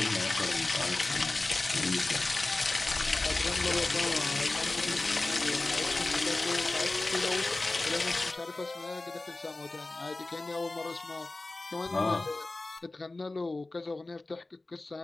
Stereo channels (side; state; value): right; quieter; 3.0 dB